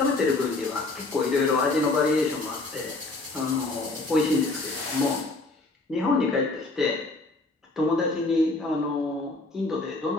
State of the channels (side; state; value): right; quieter; 3.2 dB